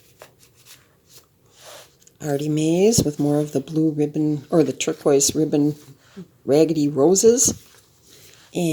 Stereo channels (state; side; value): identical; both; correlation 1.00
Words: Artymaze with more of the blue ribbon, or the turquoise ribbon raggedy roses.